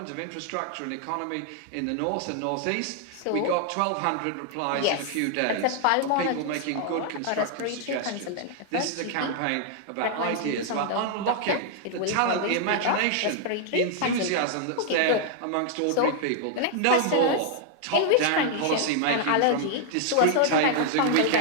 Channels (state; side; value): different; both; correlation 0.00